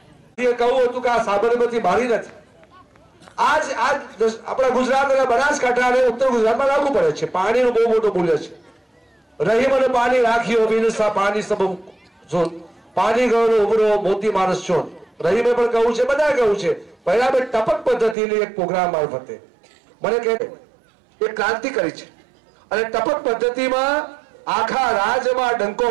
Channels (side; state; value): left; drops out; at 18.2 s